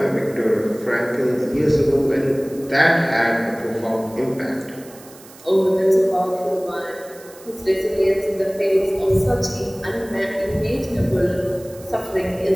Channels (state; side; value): noise; right; hiss, 22 dB below the sound